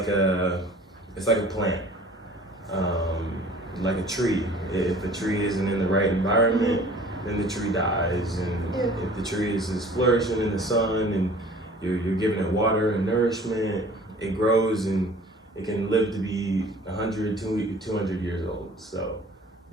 a plant, like a tree. If a tree isn't in the right environment, then the tree dies. And if the tree is flourishing in the sun and you're giving it water and nourishment, it grows and it can live to be 100, 200 years old. So,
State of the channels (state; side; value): normal; both; correlation 0.48